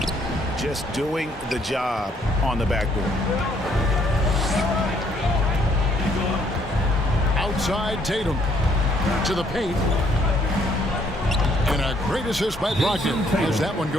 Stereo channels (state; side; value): normal; both; correlation 0.67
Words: Just doing the job on the backboard. Outside Tatum. To the paint. And a great assist by Brogdon as that one